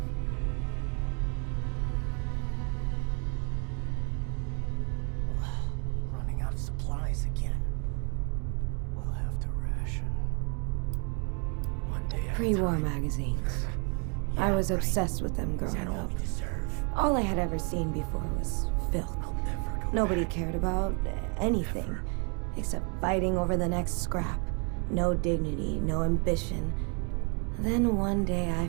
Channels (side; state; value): left; quieter; 36.9 dB